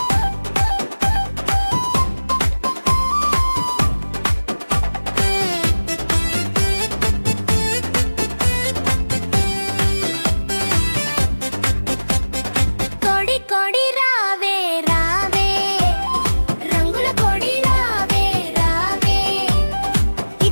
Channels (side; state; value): both; inverted; correlation -1.00